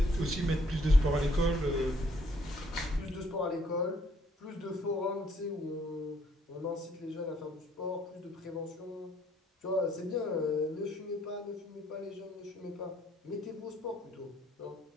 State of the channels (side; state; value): both; normal; correlation 0.65